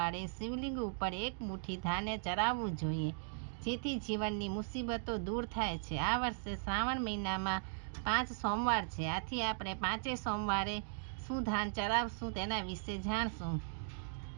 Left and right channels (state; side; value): silent; left; digital silence